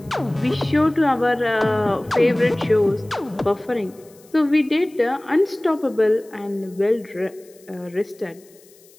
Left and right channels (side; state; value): left; noise; hiss, 27 dB below the sound